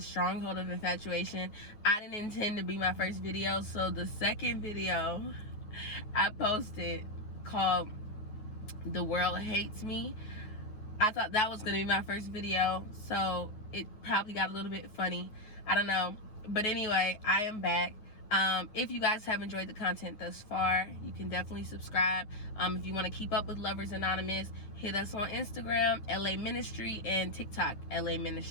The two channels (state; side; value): late; right; 9.5 ms